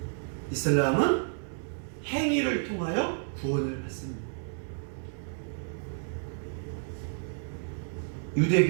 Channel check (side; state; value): left; silent; digital silence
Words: 이슬람은 행위를 통하여 구원을 받습니다.